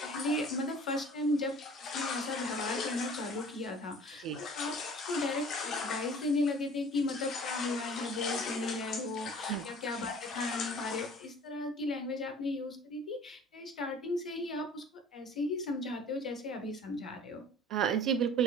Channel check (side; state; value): both; normal; correlation 0.47